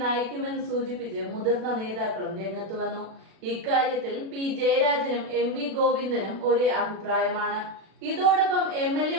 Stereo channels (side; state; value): left; late; 36 ms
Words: നയിക്കുമെന്ന് സൂചിപ്പിച്ച് മുതിർന്ന നേതാക്കളും രംഗത്ത് വന്നു. ഇക്കാര്യത്തിൽ P ജയരാജനും MV ഗോവിന്ദനും ഒരേ അഭിപ്രായമാണ്. ഇതോടൊപ്പം